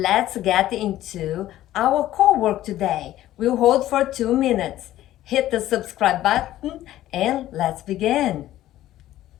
get into our core work today. We'll hold for 2 minutes. Hit the subscribe button and let's begin.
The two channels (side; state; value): right; quieter; 14.0 dB